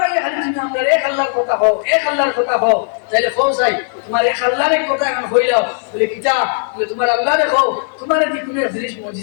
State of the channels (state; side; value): silent; right; 60 dB below the other